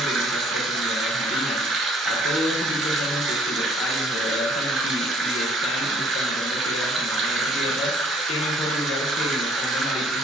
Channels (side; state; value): both; normal; correlation 0.59